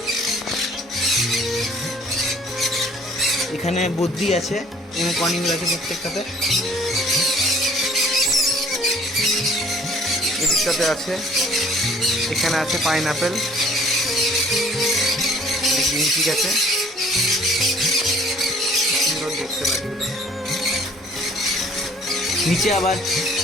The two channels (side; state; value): both; normal; correlation 0.55